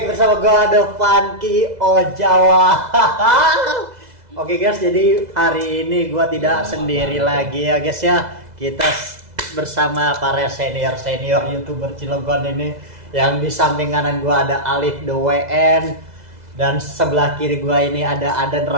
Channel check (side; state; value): left; late; 2.0 ms